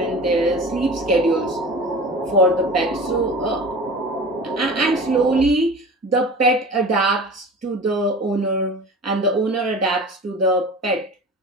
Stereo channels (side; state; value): both; normal; correlation 0.37